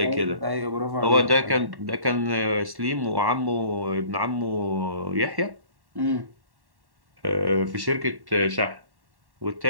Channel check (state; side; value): late; left; 1.1 ms